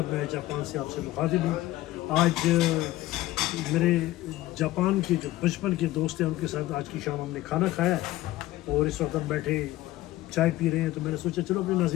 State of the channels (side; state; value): right; quieter; 16.5 dB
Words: میں جاپان سے آپ سے مخاطب ہوں۔ آج میرے جاپان کے جو بچپن کے دوست ہیں ان کے ساتھ آج کی شام ہم نے کھانا کھایا ہے اور اس وقت ہم بیٹھے چائے پی رہے ہیں، تو میں نے سوچا چلو اپنے